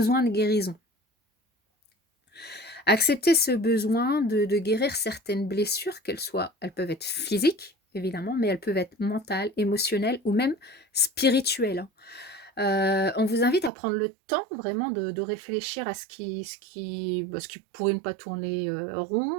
de guérison. Accepter ce besoin de guérir certaines blessures, elles peuvent être physiques, évidemment, mais elles peuvent être mentales, émotionnelles ou même spirituelles, hein. On vous invite à prendre le temps vraiment de réfléchir à ce qui pourrait ne pas tourner,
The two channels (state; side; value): drops out; left; at 13.7 s